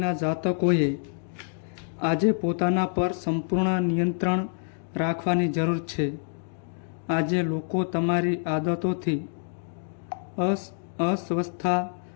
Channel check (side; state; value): right; silent; digital silence